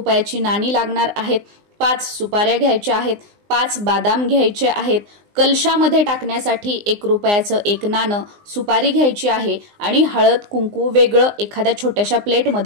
नाणी लागणार आहेत, 5 सुपाऱ्या घ्यायच्या आहेत, 5 बदाम घ्यायचे आहेत, कलशामध्ये टाकण्यासाठी 1 रुपयाचं 1 नाणं, सुपारी घ्यायची आहे आणि हळद कुंकू वेगळं एखाद्या छोट्याशा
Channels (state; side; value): late; left; 19 ms